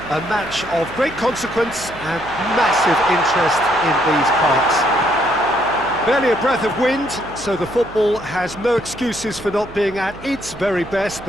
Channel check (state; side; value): noise; right; hum, 18 dB below the sound